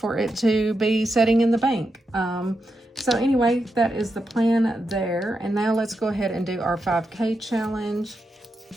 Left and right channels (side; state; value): both; normal; correlation 0.86